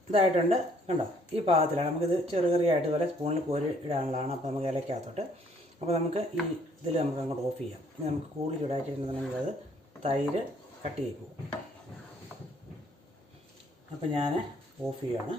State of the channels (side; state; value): both; normal; correlation 0.64